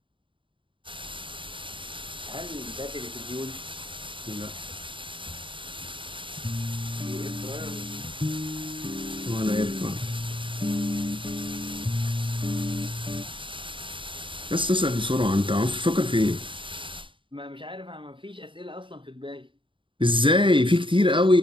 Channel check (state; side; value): late; left; 0.24 ms